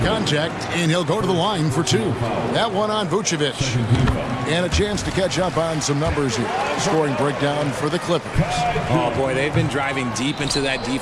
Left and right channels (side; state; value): both; identical; correlation 1.00